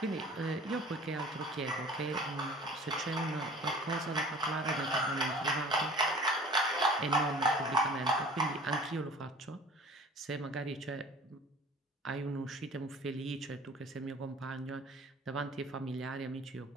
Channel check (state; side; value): normal; both; correlation 0.45